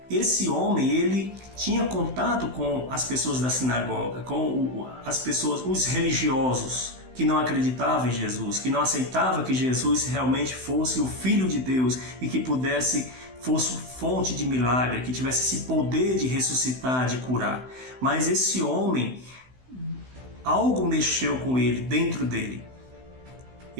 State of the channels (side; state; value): left; late; 16 ms